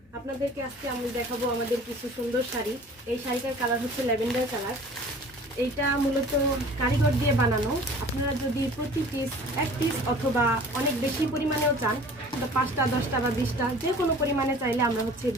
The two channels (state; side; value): normal; both; correlation 0.46